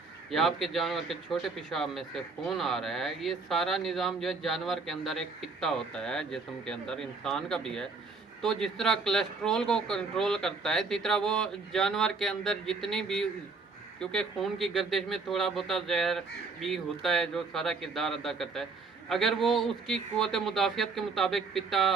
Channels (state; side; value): quieter; left; 4.3 dB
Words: या आपके जानवर के छोटे पेशाब में से खून आ रहा है, ये सारा निज़ाम जो है जानवर के अंदर एक पित्ता होता है जिस्म के अंदर, इंसान का भी है। तो जिस तरह कोलेस्ट्रोल को कंट्रोल करता है, इसी तरह वो जानवर के अंदर जितनी भी, क्योंकि खून की गर्दिश में थोड़ा बहुत जहर भी होता है जो सारा किरदार अदा करता है, अगर वो उसकी क़ुव्वत मुदाफ़ियत के मुताबिक पित्ता